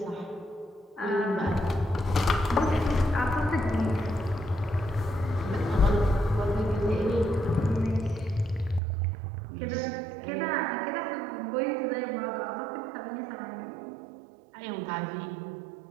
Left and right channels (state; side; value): drops out; left; at 8.8 s